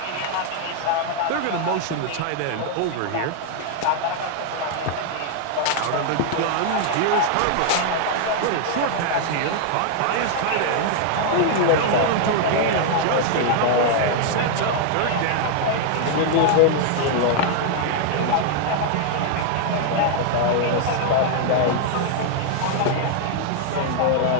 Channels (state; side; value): different; both; correlation 0.00